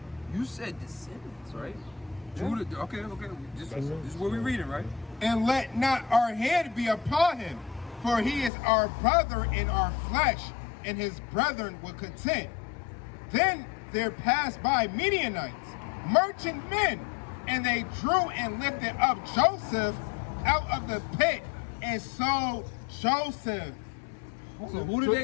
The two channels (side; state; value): right; drops out; at 8.5 s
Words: You said descendants, right? Judah, okay. This is what we're reading, right? And let not our hand be upon him, for he is our brother in our flesh, and his brethren were content. Then there passed by Midianites, merchant men, and they drew and lifted up Joseph out of the pit and sold Joseph. So who did